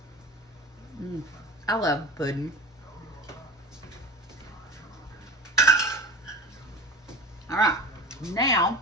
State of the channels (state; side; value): normal; both; correlation 0.33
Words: I love pudding. All right, now